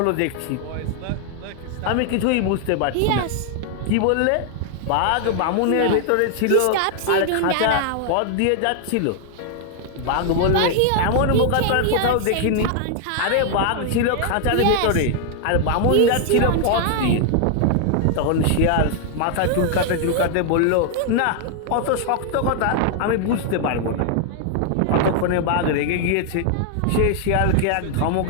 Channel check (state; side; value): different; both; correlation 0.00